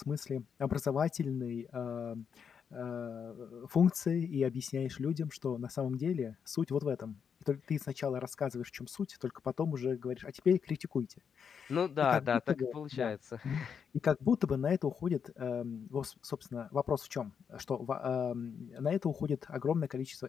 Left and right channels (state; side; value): quieter; right; 7.0 dB